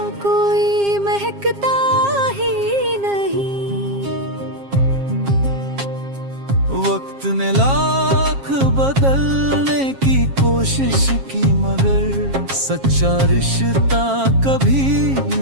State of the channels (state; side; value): late; left; 7.4 ms